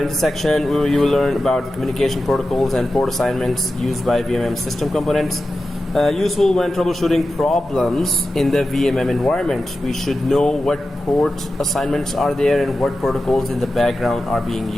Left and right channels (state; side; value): normal; both; correlation 0.93